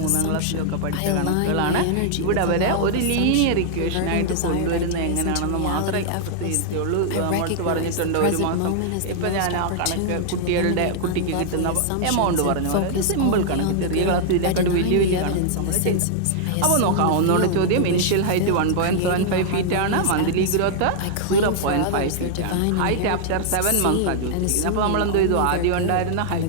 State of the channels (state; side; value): different; both; correlation -0.01